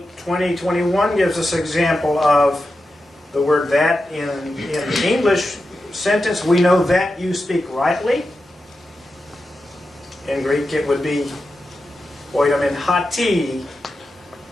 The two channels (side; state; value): both; normal; correlation 0.90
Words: 20:21 gives us an example of the word that in the English sentence. We know that you speak rightly. In Greek it would be oidamin hati